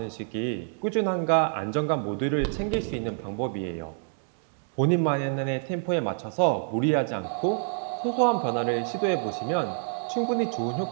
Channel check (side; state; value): left; silent; digital silence